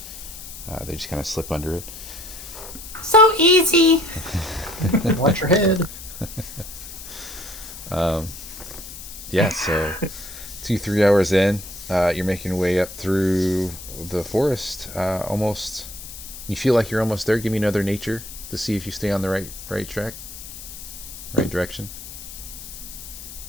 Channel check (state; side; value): noise; left; hiss, 13 dB below the sound